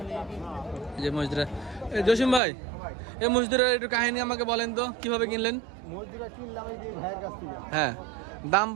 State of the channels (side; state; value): left; drops out; at 2.4 s